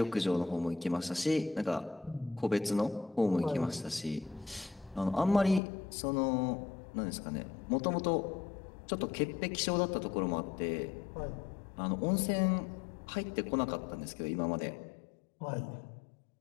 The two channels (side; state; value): right; drops out; at 5.6 s